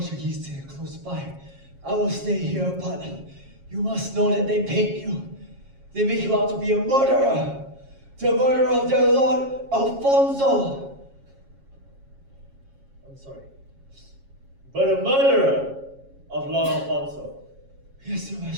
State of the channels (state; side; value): late; left; 7.3 ms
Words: are close by. I will stay here, but you must know that they paint you. They make you out to be a murderer. The murderer of their lord, Afonso. I'm sorry. But a murderer of Lord Afonso. Yes, Your